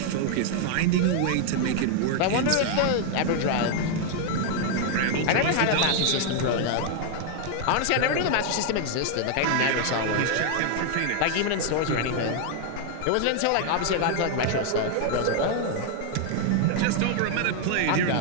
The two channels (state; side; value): different; both; correlation 0.00